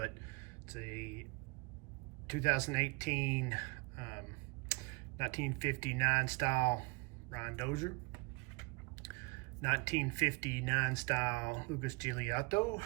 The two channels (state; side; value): quieter; left; 29.0 dB